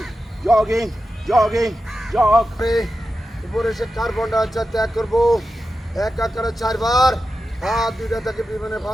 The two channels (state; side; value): normal; both; correlation 0.91